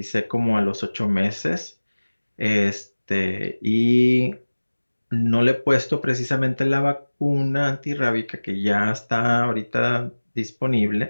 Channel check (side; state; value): both; inverted; correlation -1.00